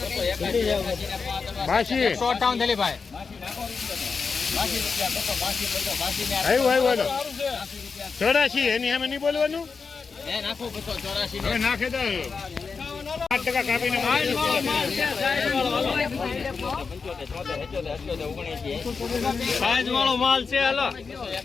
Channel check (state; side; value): quieter; right; 5.1 dB